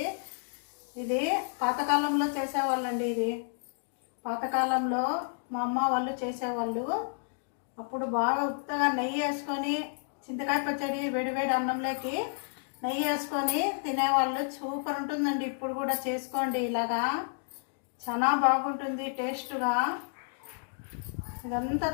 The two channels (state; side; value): silent; right; digital silence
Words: ఇది పాతకాలంలో చేసేవాళ్ళండి. ఇది పాతకాలంలో మా అమ్మ వాళ్ళు చేసేవాళ్ళు. అప్పుడు బాగా ఉత్తగా నెయ్యి వేసుకొని చింతకాయ పచ్చడి వేడివేడి అన్నంలోకి నెయ్యి వేసుకొని తినేవాళ్ళు. సూపర్ ఉంటుందండి. ఇప్పుడు కూడా చేసుకోండి, ఇలాగా చాలా బాగుంటుంది టేస్ట్గా. ఇదంతా